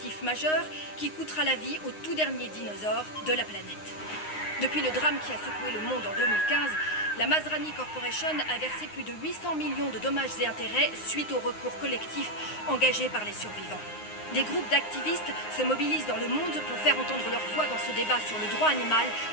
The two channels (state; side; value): late; right; 9.6 ms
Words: majeur qui coûtera la vie au tout dernier dinosaure de la planète. Depuis le drame qui a secoué le monde en 2015, la Masrani Corporation a versé plus de 800 millions de dommages et intérêts suite au recours collectif engagé par les survivants. Des groupes d'activistes se mobilisent dans le monde pour faire entendre leur voix dans ce débat sur le droit animal